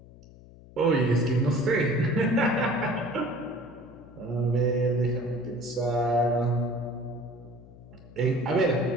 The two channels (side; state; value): left; noise; hum, 21 dB below the sound